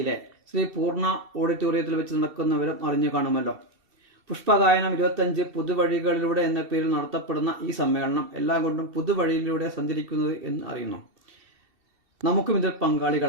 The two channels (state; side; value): late; left; 2.7 ms